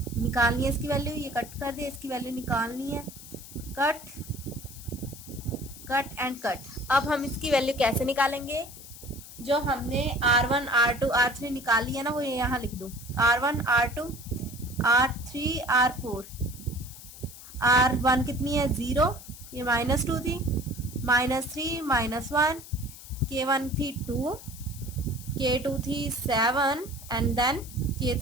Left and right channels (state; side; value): noise; left; hiss, 16 dB below the sound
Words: निकालनी है इसकी वैल्यू, ये कट कर दिया, इसकी वैल्यू निकालनी है। Cut and cut. अब हम इसकी वैल्यू कैसे निकालेंगे? जो हमने R1 R2 R3 निकाली है ना, वो यहाँ लिख दो। R1 R2 R3 R4। R1 कितनी है? 0, ये -2 थी, -3 -1, K1 थी 2, K2 थी 7 एंड देन